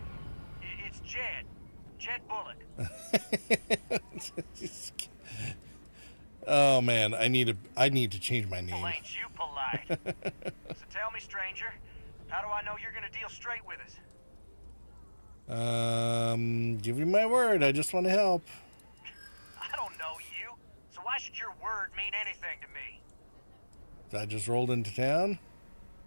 It's Jed. Jed Bullock. Oh man, I need to change my name. Well, ain't you polite? So tell me, stranger, how do I know you're gonna deal straight with us? Give you my word. I just want to help. I don't know you, so why should your word mean anything to me? I just rolled into town.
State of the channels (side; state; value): both; inverted; correlation -1.00